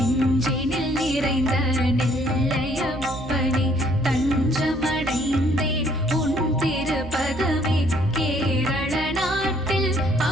நிறைந்த நெல்லையப்பனே, தஞ்சமடைந்தேன் உன் திருப்பதமே. கேரள நாட்டில்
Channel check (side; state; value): right; noise; hum, 13 dB below the sound